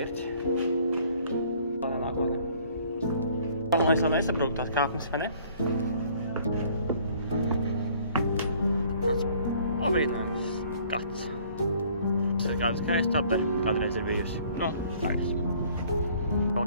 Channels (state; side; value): inverted; both; correlation -0.57